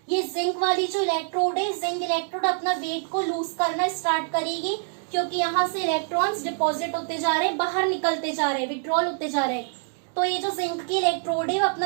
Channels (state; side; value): silent; left; 61 dB below the other